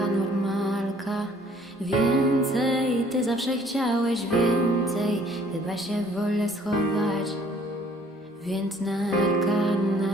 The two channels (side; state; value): both; normal; correlation 0.58